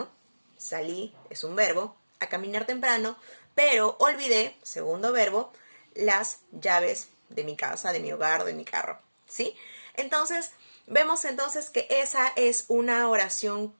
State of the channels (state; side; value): inverted; both; correlation -1.00